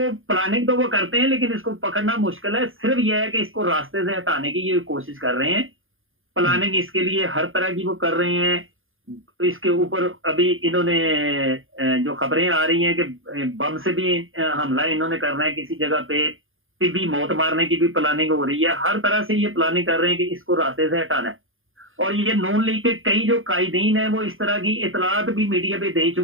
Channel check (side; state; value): left; late; 0.59 ms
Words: प्लानिंग तो वो करते हैं लेकिन इसको पकड़ना मुश्किल है। सिर्फ यह है कि इसको रास्ते से हटाने की ये कोशिश कर रहे हैं, प्लानिंग इसके लिए हर तरह की वो कर रहे हैं। तो इसके ऊपर अभी इन्होंने जो खबरें आ रही हैं कि बम से भी हमला इन्होंने करना है किसी जगह पे, भी मौत मारने की भी प्लानिंग हो रही है। हर तरह से ये प्लानिंग कर रहे हैं कि इसको रास्ते से हटाना है। और ये नून लीग के कई जो कायदीन है वो इस तरह की इतलात भी मीडिया पे दे